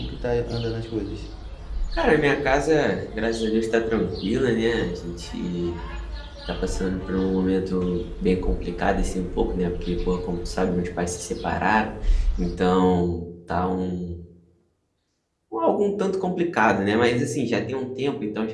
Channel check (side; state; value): both; identical; correlation 1.00